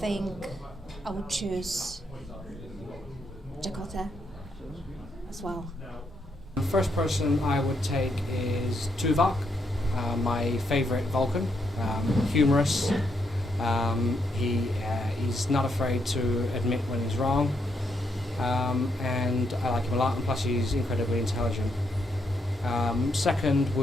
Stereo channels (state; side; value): normal; both; correlation 0.78